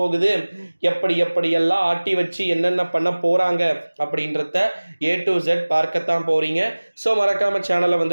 எப்படியெல்லாம் ஆட்டி வச்சு என்னென்ன பண்ண போறாங்க அப்படின்றத A to Z பார்க்கத்தான் போறீங்க. ஸோ மறக்காம சேனலை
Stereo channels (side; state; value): both; inverted; correlation -1.00